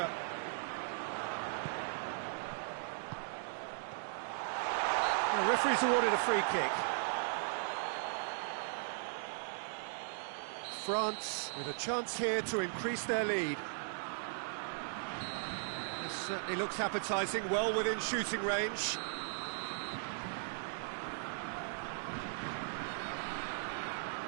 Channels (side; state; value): left; silent; digital silence